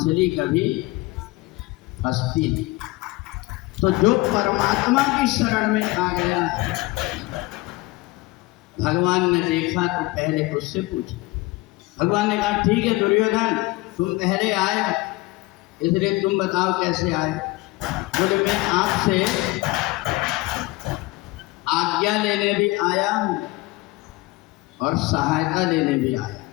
कभी फंसती नहीं। तो जो परमात्मा की शरण में आ गया है, भगवान ने देखा तो पहले उससे पूछा। भगवान ने कहा ठीक है दुर्योधन तुम पहले आए इसलिए तुम बताओ कैसे आए? बोले मैं आपसे आज्ञा लेने भी आया हूँ और सहायता लेने भी आया।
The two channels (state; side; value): quieter; right; 21.2 dB